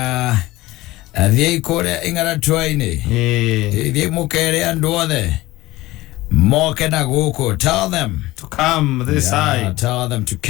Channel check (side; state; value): right; quieter; 18.4 dB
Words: athie kore ingara twaini thie mukere andu othe moke na guku. Tell them to come this side. Tell them to